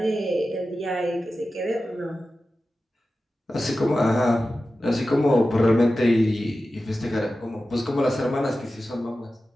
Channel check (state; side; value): normal; both; correlation 0.94